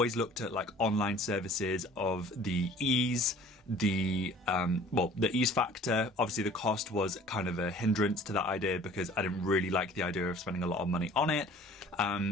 looked at like online services of the ease, the ease factor. Obviously the cost was kind of a hindrance to that idea because I didn't really like the idea of spending a lot of money on it.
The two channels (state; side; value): normal; both; correlation 0.49